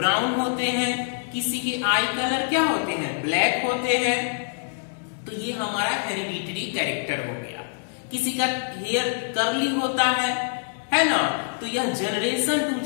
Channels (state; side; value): silent; right; digital silence